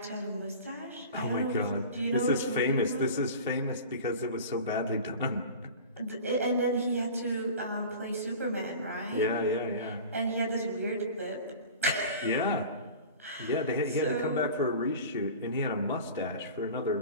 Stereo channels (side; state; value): both; inverted; correlation -0.37